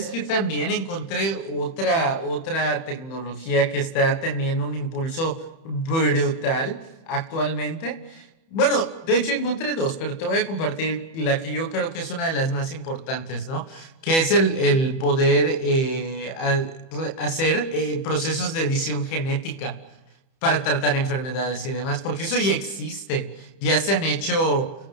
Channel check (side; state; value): right; late; 31 ms